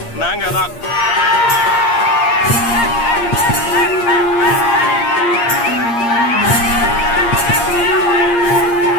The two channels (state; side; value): late; right; 8.6 ms